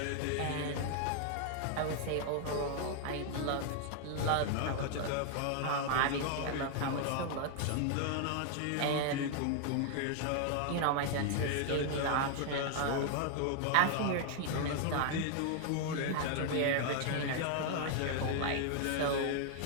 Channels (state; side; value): different; both; correlation 0.00